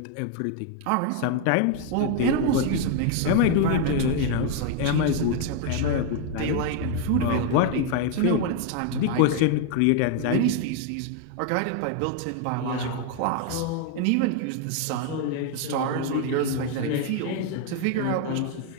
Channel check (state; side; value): different; both; correlation 0.00